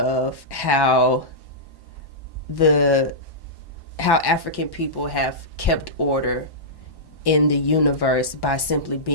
how African people have kept order in the universe by simply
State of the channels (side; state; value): right; late; 1.1 ms